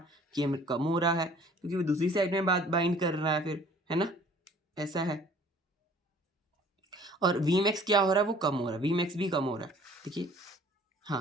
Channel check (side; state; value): both; normal; correlation 0.52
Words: Km कम हो रहा है, क्योंकि वो दूसरी साइड में बाइंड कर रहा है फिर, है ना, ऐसा है। और Vmax क्या हो रहा है, वो कम हो रहा है, Vmax भी कम हो रहा है, देखिए।